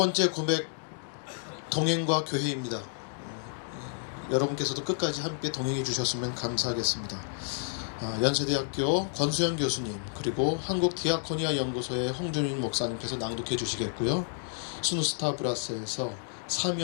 고백, 동행과 교회입니다. 여러분께서도 끝까지 함께 동행해 주셨으면 감사하겠습니다. 연세대학교 권수영 교수님, 그리고 한국디아코니아 연구소의 홍준인 목사님께서 낭독해 주시겠고요. 순우스타 브라스에서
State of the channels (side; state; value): right; silent; digital silence